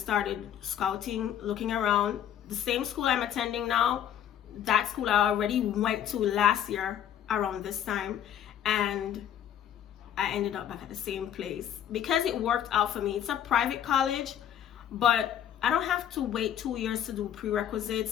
scouting, looking around. The same school I'm attending now, that school I already went to last year around this time, and I ended up back at the same place because it worked out for me. It's a private college, but I don't have to wait 2 years to do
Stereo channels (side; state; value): right; quieter; 10.1 dB